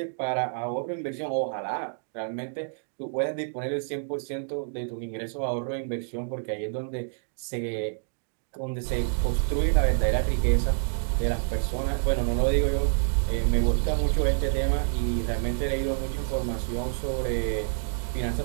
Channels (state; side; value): silent; left; digital silence